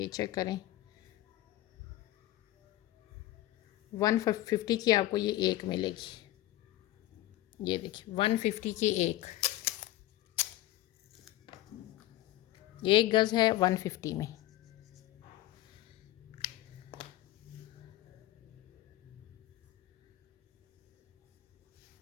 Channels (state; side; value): quieter; right; 15.4 dB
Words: चेक करें। 150 की आपको ये एक मिलेगी। ये देखिए 150 की एक, 1 गज़ है 150 में।